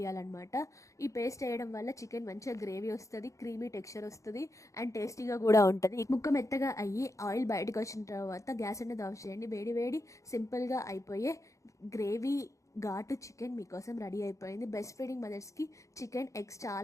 ఈ పేస్ట్ వేయడం వల్ల చికెన్ మంచిగా గ్రేవీ వస్తుంది, క్రీమీ టెక్స్చర్ వస్తుంది అండ్ టేస్టీగా కూడా ఉంటుంది. ముక్క మెత్తగా అయ్యి ఆయిల్ బయటకు వచ్చిన తర్వాత గ్యాస్ అనేది ఆఫ్ చేయండి. వేడి వేడి సింపుల్గా అయిపోయే గ్రేవీ ఘాటు చికెన్ మీకోసం రెడీ అయిపోయింది. బెస్ట్ ఫీడింగ్ మదర్స్కి చికెన్, ఎగ్స్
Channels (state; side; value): late; right; 0.15 ms